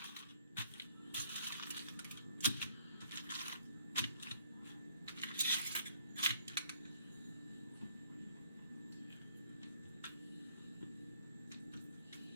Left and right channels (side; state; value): both; inverted; correlation -0.63